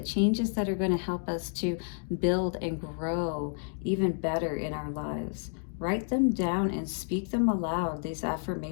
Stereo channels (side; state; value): right; silent; 58 dB below the other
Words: changes that are going to help us to build and grow even better in our lives. Write them down and speak them aloud, these